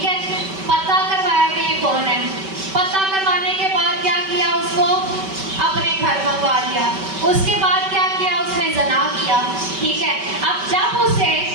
है, पता करवाया कि ये कौन है। पता करवाने के बाद क्या किया, उसको अपने घर मंगवा लिया। उसके बाद क्या किया, उसने ज़ना किया, ठीक है। अब जब उसे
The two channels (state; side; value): late; left; 5.2 ms